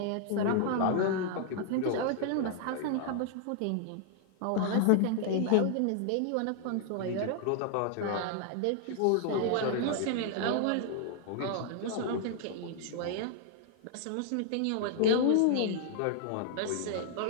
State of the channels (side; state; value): both; different; correlation -0.01